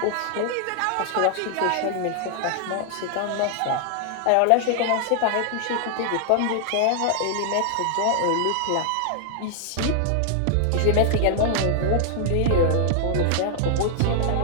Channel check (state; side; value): different; both; correlation -0.01